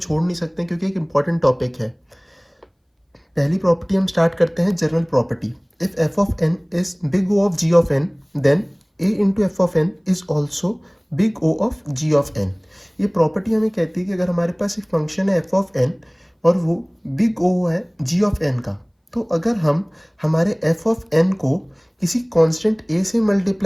नहीं सकते क्योंकि एक इम्पॉर्टेंट टॉपिक है। पहली प्रॉपर्टी हम स्टार्ट करते हैं, general property. If f of n is big O of g of n, then a into f of n is also big O of g of n. ये property हमें कहती है कि अगर हमारे पास एक फंक्शन है एफ ऑफ एन और वो बिग ओ है जी ऑफ एन का, तो अगर हम हमारे एफ ऑफ एन को किसी कांस्टेंट ए से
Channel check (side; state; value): both; identical; correlation 1.00